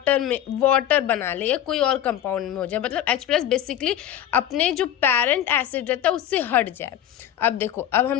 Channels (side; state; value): right; quieter; 11.1 dB